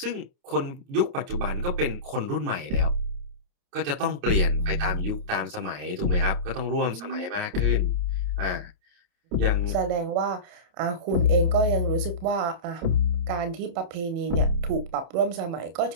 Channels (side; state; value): left; late; 29 ms